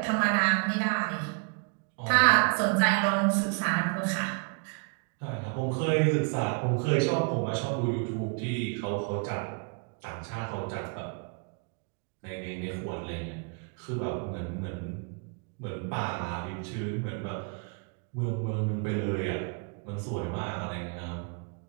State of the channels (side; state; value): left; quieter; 36.6 dB